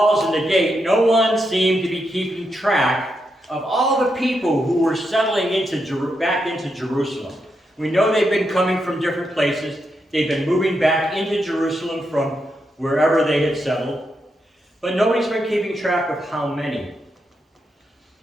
and the gate, no one seemed to be keeping track of all the people who were settling back into Jerusalem. We know they've been coming from different places. They've been moving back into Jerusalem from wherever they had settled. But nobody's been keeping track of how many.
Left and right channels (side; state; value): both; normal; correlation 0.83